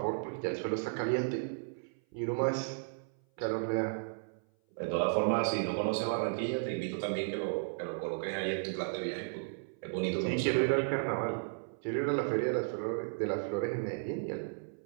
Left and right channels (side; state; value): left; silent; 55 dB below the other